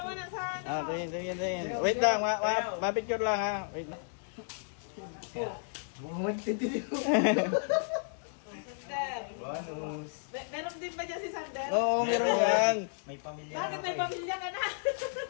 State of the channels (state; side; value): silent; right; digital silence